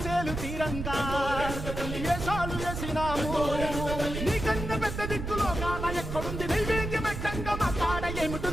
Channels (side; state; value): right; noise; rumble, 5 dB below the sound